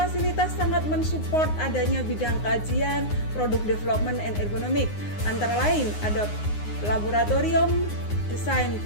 sangat mensupport adanya bidang kajian, produk development and ergonomik. Antara lain ada laboratorium desain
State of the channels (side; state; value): right; late; 9.6 ms